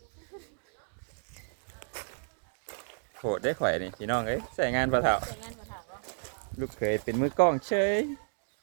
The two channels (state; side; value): silent; left; digital silence